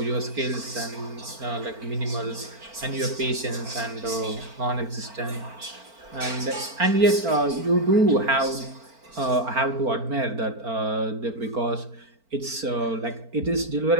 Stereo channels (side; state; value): left; late; 4.4 ms